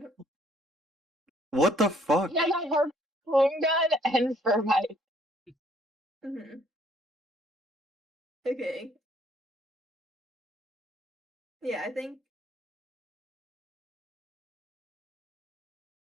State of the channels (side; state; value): both; normal; correlation 0.63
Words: What the fuck? He has a harpoon gun and thermite. Mm-hmm. Okay. Yeah, I think.